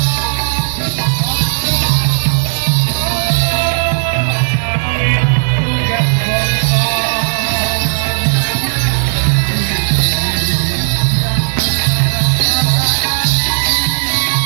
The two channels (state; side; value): silent; left; digital silence